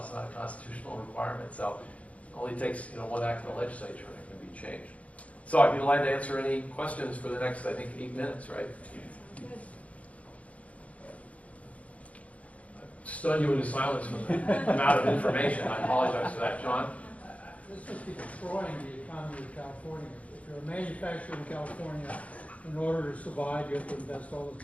It's not a constitutional requirement. So it only takes, you know, one act of the legislature and it can be changed. So I'd be delighted to answer any questions for the next, I think, 8 minutes, right? Stun you into silence from the amount of information. I apologize for that, John. This must be destroying the economy of California. If you're a manufacturer in California, in order to survive, you have to invest all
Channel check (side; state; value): right; late; 0.066 ms